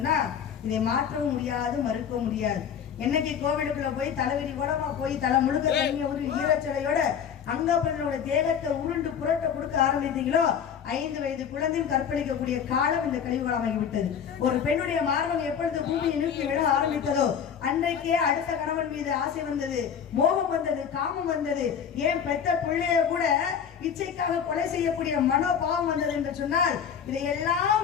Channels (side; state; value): right; quieter; 7.9 dB